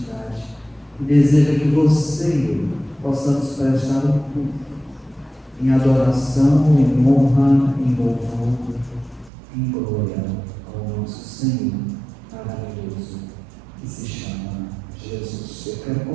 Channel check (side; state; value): left; drops out; at 9.3 s